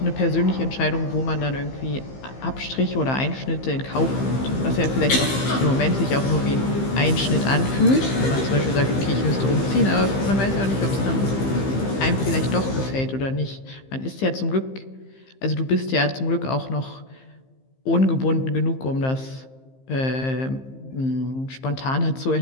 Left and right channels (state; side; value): late; right; 15 ms